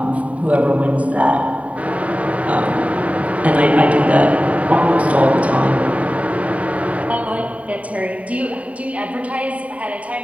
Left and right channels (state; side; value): late; left; 0.067 ms